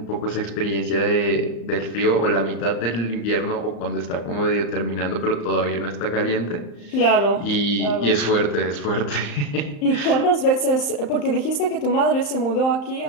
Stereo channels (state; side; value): late; right; 35 ms